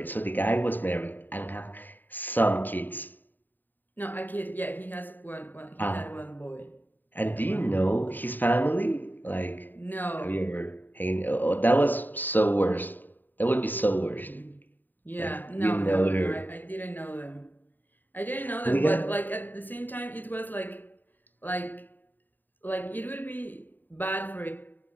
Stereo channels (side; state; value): right; late; 0.090 ms